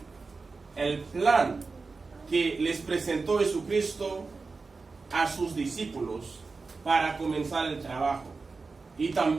el plan que les presentó Jesucristo a sus discípulos para comenzar el trabajo. Y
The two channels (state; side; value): quieter; left; 4.2 dB